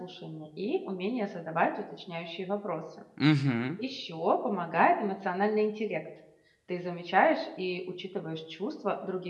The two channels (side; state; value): both; identical; correlation 1.00